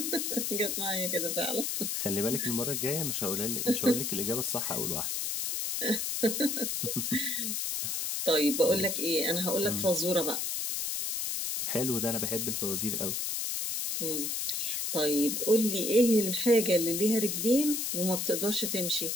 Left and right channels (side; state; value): left; noise; hiss, 1 dB below the sound